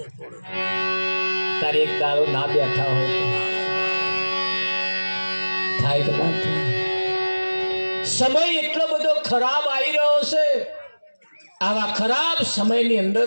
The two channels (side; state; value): both; inverted; correlation -1.00